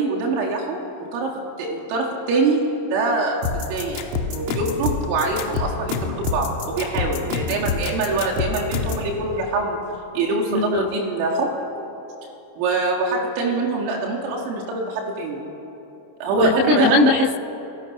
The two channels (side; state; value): left; late; 27 ms